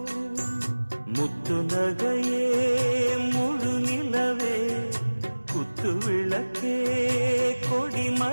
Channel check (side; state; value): both; inverted; correlation -1.00